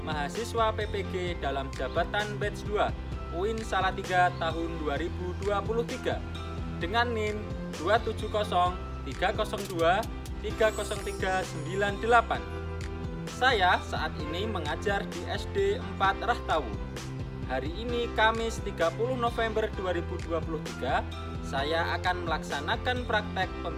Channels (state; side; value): identical; both; correlation 1.00